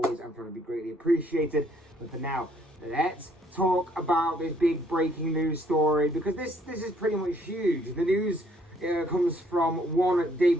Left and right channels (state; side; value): normal; both; correlation 0.65